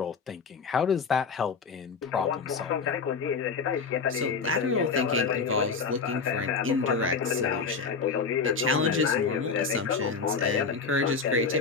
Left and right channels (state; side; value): quieter; right; 5.1 dB